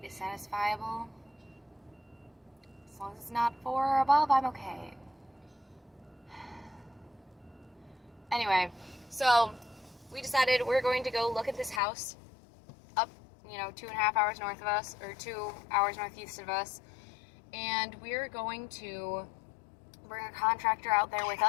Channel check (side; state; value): right; drops out; at 11.8 s